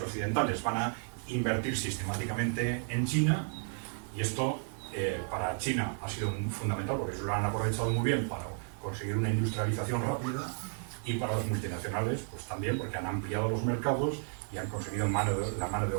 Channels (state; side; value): silent; left; 56 dB below the other